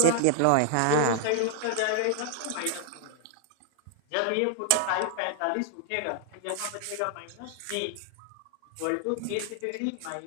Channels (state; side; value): different; both; correlation 0.00